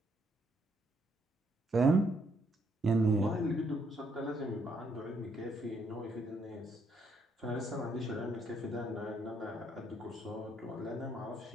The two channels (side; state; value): both; normal; correlation 0.72